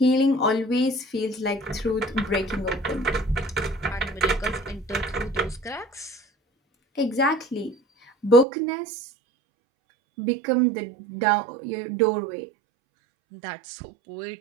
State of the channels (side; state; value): left; drops out; at 8.5 s